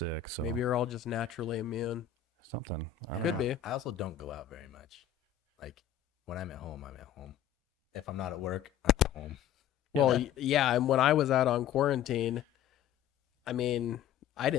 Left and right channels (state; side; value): quieter; right; 9.8 dB